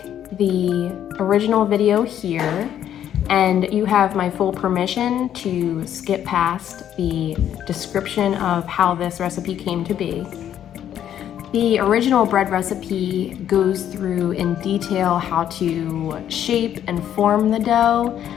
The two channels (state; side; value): quieter; right; 10.4 dB